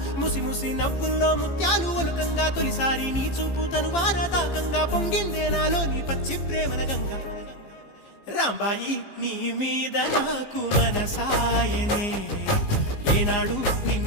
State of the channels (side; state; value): right; late; 15 ms